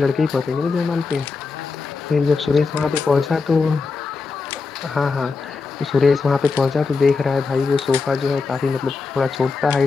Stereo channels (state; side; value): quieter; right; 4.4 dB